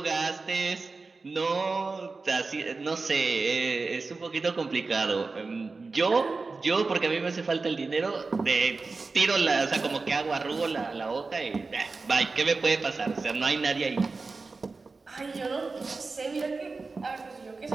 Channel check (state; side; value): quieter; left; 4.0 dB